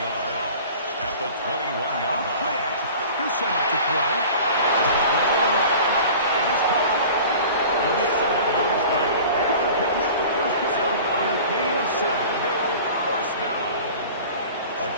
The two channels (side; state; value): both; inverted; correlation -0.41